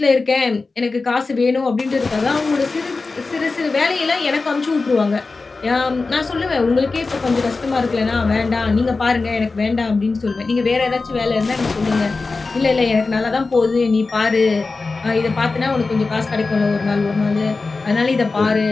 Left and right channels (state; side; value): quieter; right; 3.9 dB